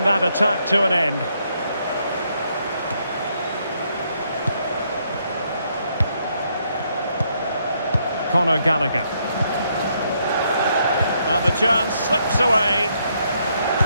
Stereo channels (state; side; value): inverted; both; correlation -0.74